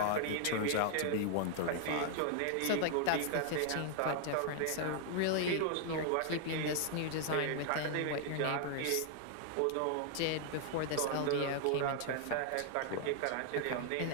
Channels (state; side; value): different; both; correlation 0.00